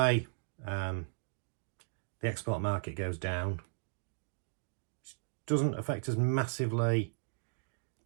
the export market goes down. Doesn't affect us massively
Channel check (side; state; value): left; silent; digital silence